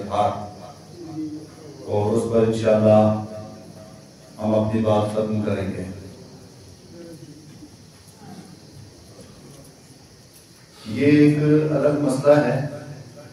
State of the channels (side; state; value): both; identical; correlation 1.00